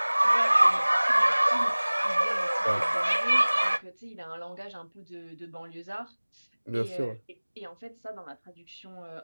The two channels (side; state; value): both; inverted; correlation -1.00